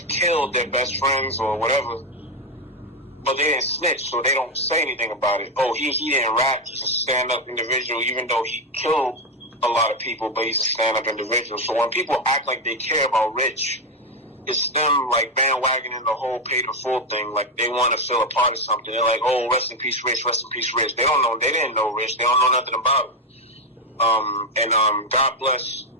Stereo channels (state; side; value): normal; both; correlation 0.07